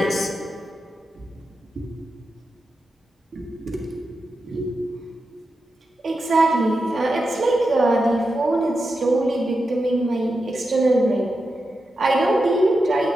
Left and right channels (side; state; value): both; normal; correlation 0.89